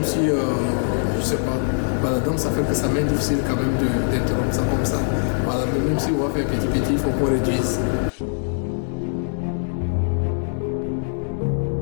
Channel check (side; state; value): right; silent; 63 dB below the other